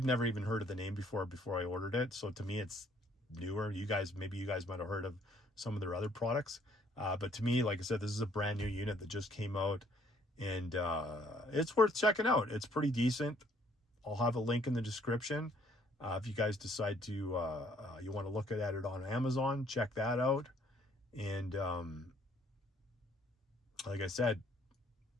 never even heard of the name before I ordered it. So to me, it's newer. Maybe you guys might have heard of some of their other products. But to me, like I said, this is a brand new unit that just came out, and it's worth checking out. It's pretty decent. I'll have a link in the description. If you guys decide to, you want to look at it on Amazon, check that out. And like I said,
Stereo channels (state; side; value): normal; both; correlation 0.63